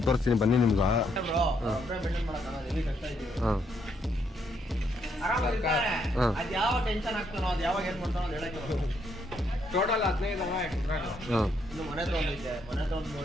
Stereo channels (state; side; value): normal; both; correlation 0.74